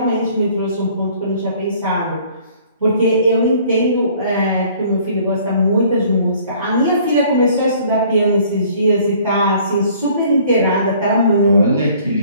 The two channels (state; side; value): inverted; both; correlation -0.56